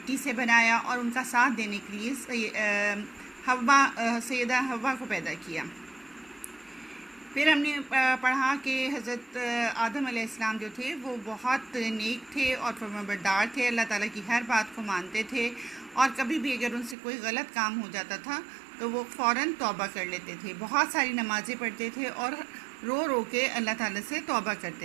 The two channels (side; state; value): left; drops out; at 16.9 s